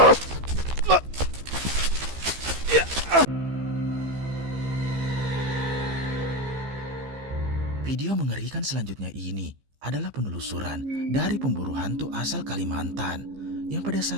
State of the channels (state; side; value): late; left; 15 ms